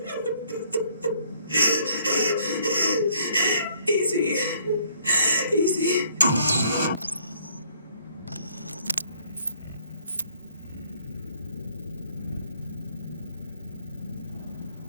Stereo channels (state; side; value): inverted; both; correlation -0.63